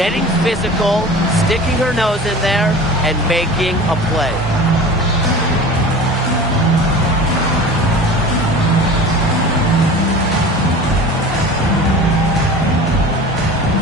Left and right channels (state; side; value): normal; both; correlation 0.37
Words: physical, sticking her nose in there, and making a play.